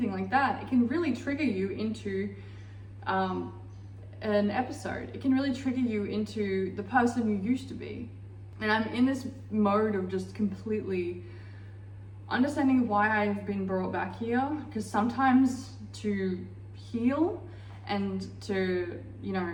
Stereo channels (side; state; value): both; identical; correlation 1.00